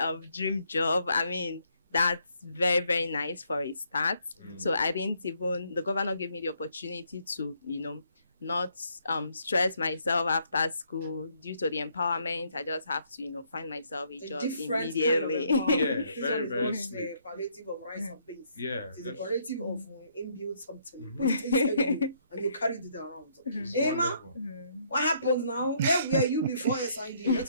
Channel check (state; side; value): inverted; both; correlation -0.69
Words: dream job. I mean, that's very, very nice for a start. So I didn't even, the governor gave me the opportunity to, not stress myself after school due to the empowerment. I just have to, find myself a job immediately. Yeah, very, very the palliative of rice and beans. Yeah. It's a palliative of inbuild something. Put it inside you, and you carry it around. Hey, ma, what happens now? Where were you before SID? Let